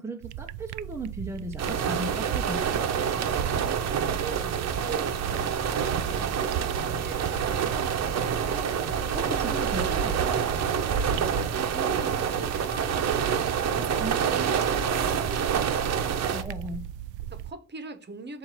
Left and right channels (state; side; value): quieter; left; 6.9 dB